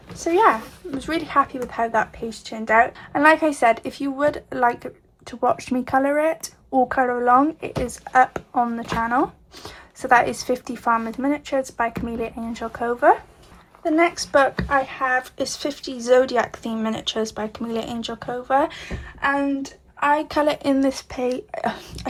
So yeah, I was really happy with how that page turned out. And like I said, if you would like to watch me colour it or colour along, it is up on the channel. So that is 50 Farmers Miniatures by Camellia Angel Cover. The next book I have is 50 Zodiac Theme Miniatures by Camellia Angel Cover, and I colour in this page, I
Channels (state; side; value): identical; both; correlation 1.00